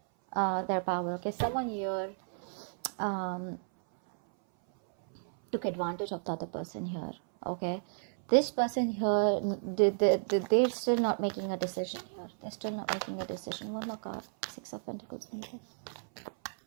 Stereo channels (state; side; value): silent; left; 56 dB below the other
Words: their power. Okay, someone here took advantage of the other person here. Okay, this person here, they're still not making a decision here. They're still not making a decision. One more card. Six of Pentacles.